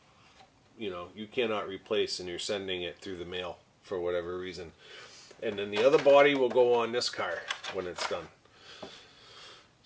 you cannot replace, and you're sending it through the mail for whatever reason. And then the other body will go on this car when it's done.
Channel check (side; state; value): both; identical; correlation 1.00